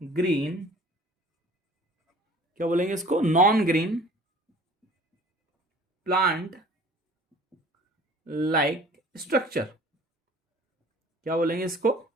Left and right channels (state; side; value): normal; both; correlation 0.49